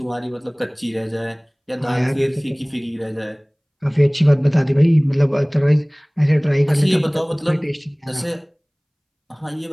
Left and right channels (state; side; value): identical; both; correlation 1.00